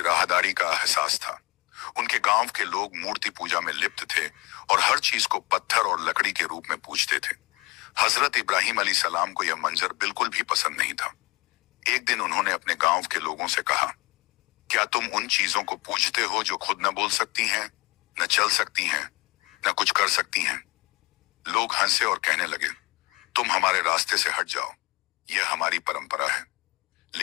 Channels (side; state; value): right; quieter; 24.2 dB